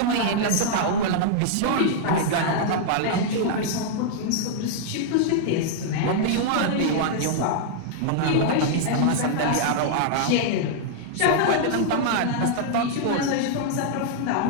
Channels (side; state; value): both; different; correlation -0.01